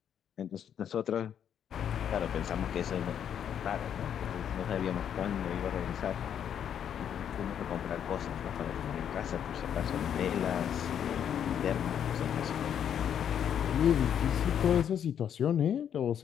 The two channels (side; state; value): right; quieter; 9.0 dB